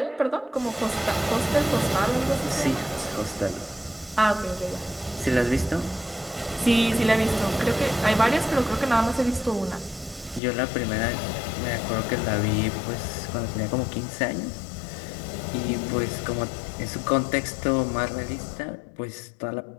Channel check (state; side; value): drops out; right; at 10.4 s